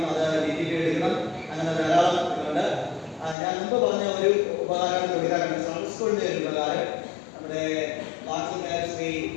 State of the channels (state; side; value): drops out; right; at 3.4 s